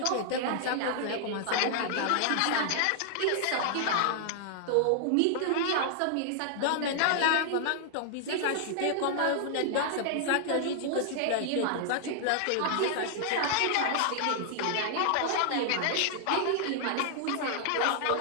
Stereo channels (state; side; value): different; both; correlation -0.01